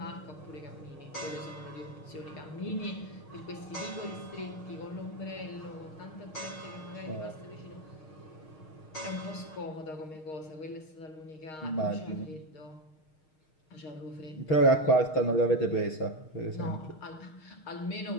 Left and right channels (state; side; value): late; right; 6.5 ms